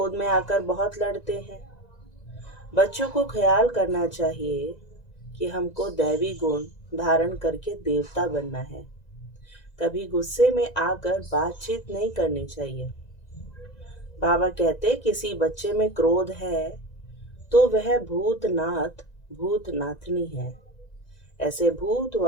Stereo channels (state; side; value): late; right; 1.9 ms